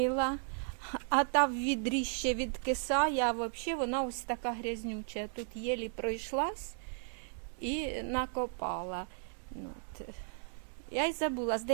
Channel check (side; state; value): left; silent; 54 dB below the other